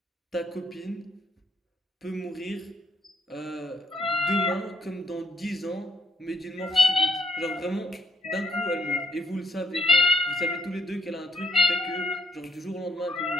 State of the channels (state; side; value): normal; both; correlation 0.70